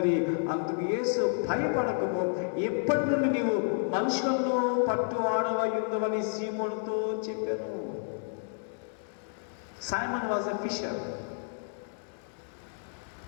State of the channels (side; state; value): right; silent; digital silence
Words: అందుకు యేసు భయపడకుము, ఇప్పటి నుండి నీవు మనుషులను పట్టువాడవై ఉందవని సీమోనుతో చెప్పాను. Simon was a fisher.